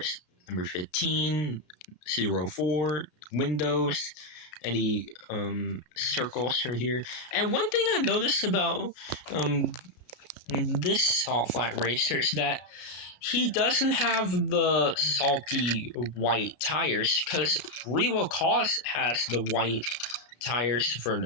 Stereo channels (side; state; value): right; late; 34 ms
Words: Number 15, 04, windows, any circles are here. And one thing I noticed about this Salt Flat Racer is that he doesn't have the salty white tires, because Revo Koss has the white tires for